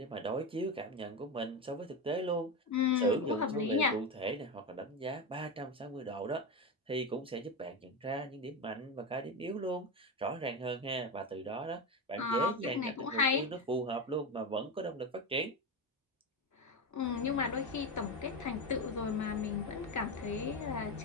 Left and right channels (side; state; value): both; normal; correlation 0.17